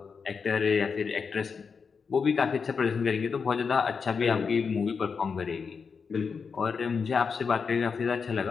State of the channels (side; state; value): right; quieter; 5.6 dB